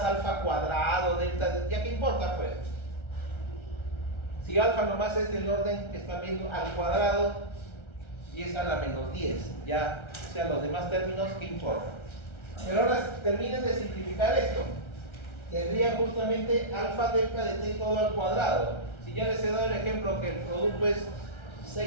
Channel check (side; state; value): right; late; 1.3 ms